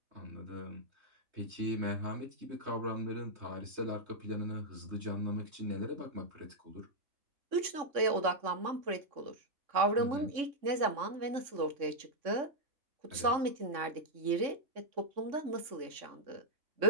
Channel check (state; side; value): late; left; 3.6 ms